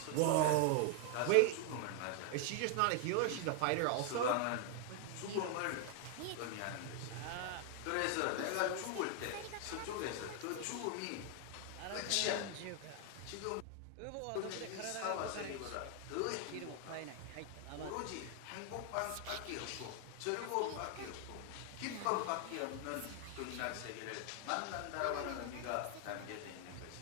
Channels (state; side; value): different; both; correlation 0.00